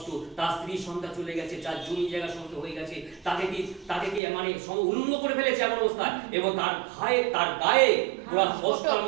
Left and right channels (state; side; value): drops out; left; at 4.2 s